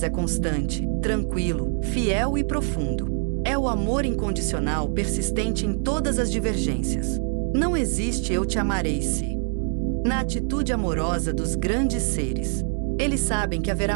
é constante, tranquilo, fiel e profundo. É o amor incondicional persistente em todas as divergências. Não existe eu te amarei se. Na atitude amorosa dos grandes seres. Eles sabem que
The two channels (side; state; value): left; silent; 56 dB below the other